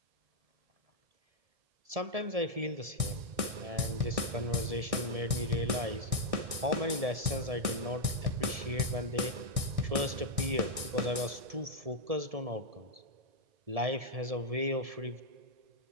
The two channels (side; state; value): left; late; 1.6 ms